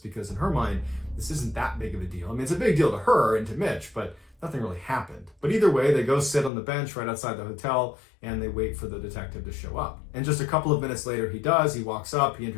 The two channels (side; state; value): right; drops out; at 6.5 s